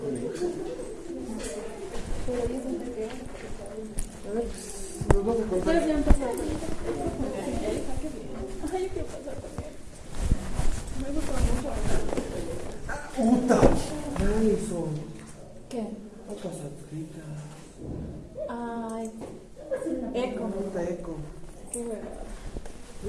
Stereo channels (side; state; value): both; identical; correlation 1.00